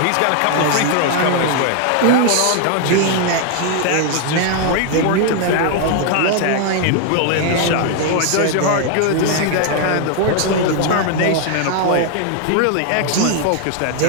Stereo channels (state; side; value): different; both; correlation 0.00